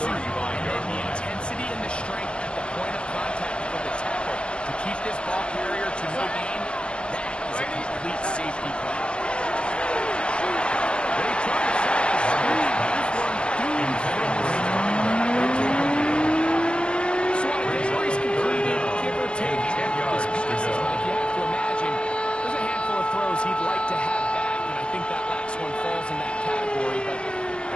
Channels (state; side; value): late; right; 0.056 ms